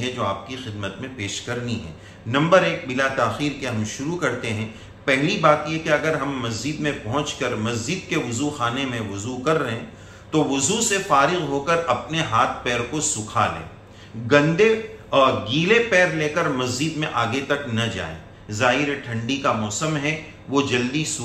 जो आपकी खिदमत में पेश करनी है। नंबर 1, बिला ताख़ीर के हम शुरू करते हैं। पहली बात यह कि अगर हम मस्जिद में पहुंचकर मस्जिद के वज़ू खाने में वज़ू कर रहे हैं तो वज़ू से फारिग होकर अपने हाथ पैर को सुखा लें। गंदे और गीले पैर लेकर मस्जिद में आगे तक न जाएं। ज़ाहिर ठंडी का मौसम है, वो जल्दी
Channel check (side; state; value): both; identical; correlation 1.00